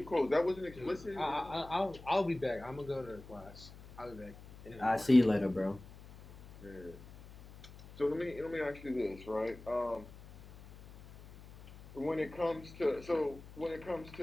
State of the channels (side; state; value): left; noise; hum, 18 dB below the sound